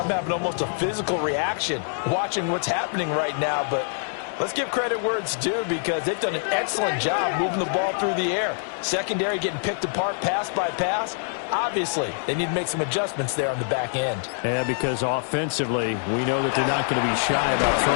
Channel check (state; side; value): silent; right; digital silence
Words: having almost a physical reaction watching what's happening right now. But let's give credit where it's due because they've done an excellent job moving the ball through the air. Secondary getting picked apart pass by pass. Obviously, they need to make some adjustments there on the back end. Yeah, because offensively, we know that they're not going to be shy about